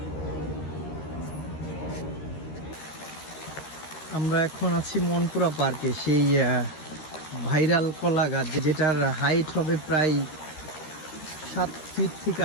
আমরা এখন আছি মনপুরা পার্কে। সেই ভাইরাল কলা গাছ যেটার হাইট হবে প্রায় 7 ফিট থেকে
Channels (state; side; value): late; right; 13 ms